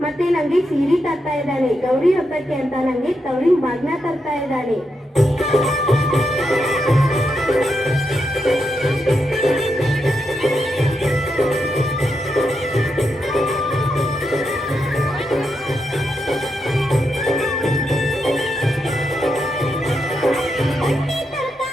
ಮತ್ತೆ ನಂಗೆ ಸೀರೆ ತರ್ತಾ ಇದ್ದಾನೆ. ಗೌರಿ ಹಬ್ಬಕ್ಕೆ ಅಂತ ನಂಗೆ ತವರಿನ ಬಾಗ್ನ ತರ್ತಾ ಇದ್ದಾನೆ.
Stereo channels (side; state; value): both; normal; correlation 0.84